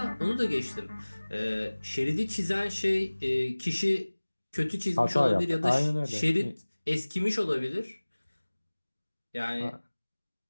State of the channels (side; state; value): both; inverted; correlation -1.00